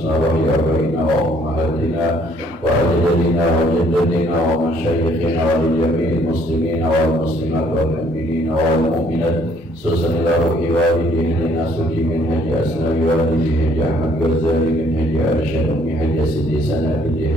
abaina wa ummahatina wa ajdadina wa jaddatina wa masyayikhina wa jami'il muslimina wal muslimat wal mu'minina wal mu'minat. Susan ila ruhi walidina nasuki min haji asnawi walidi haji Ahmad Ghazali min haji Arsyad ummi haji Sidi Sanabi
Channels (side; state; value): both; normal; correlation 0.63